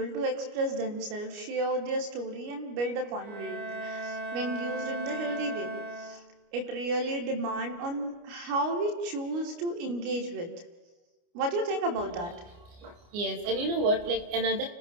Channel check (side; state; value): left; late; 29 ms